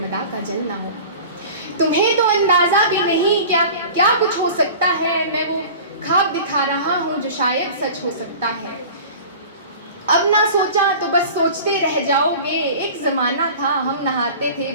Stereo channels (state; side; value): inverted; both; correlation -0.39